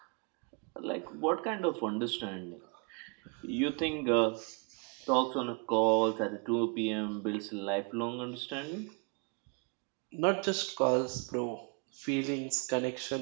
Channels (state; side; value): quieter; left; 34.9 dB